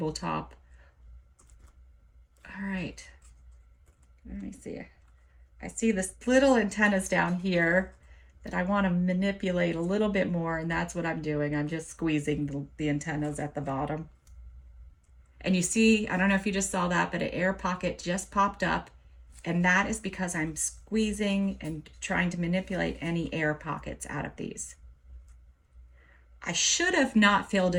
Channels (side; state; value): both; identical; correlation 1.00